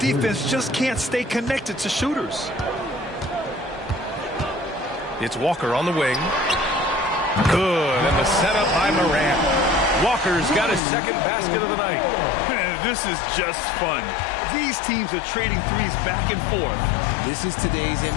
just can't stay connected to shooters. It's Walker on the wing. Good. And the setup by Moran. Walker's got his second basket of the night. Man, this is just fun. These teams are trading threes back and forth. This is today's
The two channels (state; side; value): drops out; right; at 10.8 s